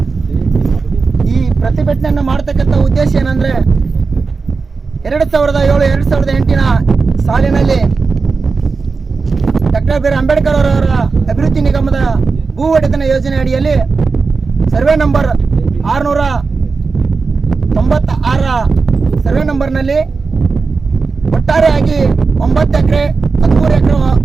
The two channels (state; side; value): quieter; left; 4.5 dB